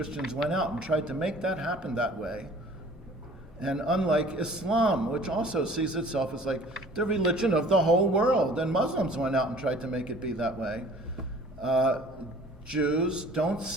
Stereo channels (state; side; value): normal; both; correlation 0.49